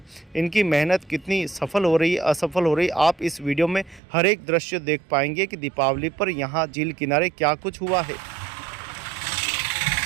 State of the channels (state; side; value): drops out; left; at 4.0 s